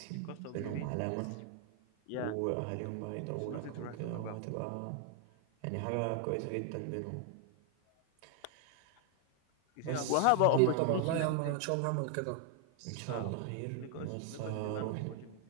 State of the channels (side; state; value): both; different; correlation 0.00